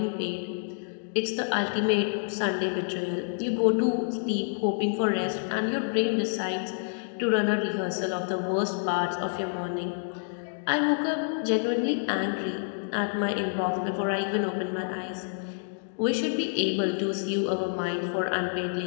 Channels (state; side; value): silent; right; digital silence